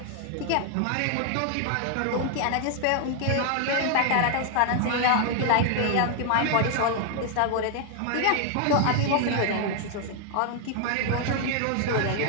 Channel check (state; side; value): different; both; correlation 0.00